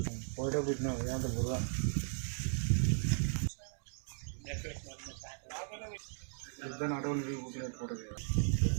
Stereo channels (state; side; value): silent; left; digital silence